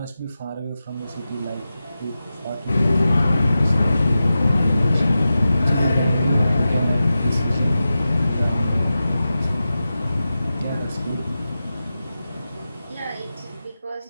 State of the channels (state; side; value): inverted; both; correlation -0.93